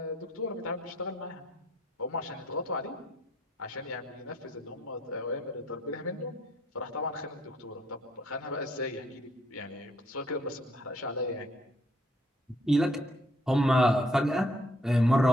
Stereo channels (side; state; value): both; normal; correlation 0.66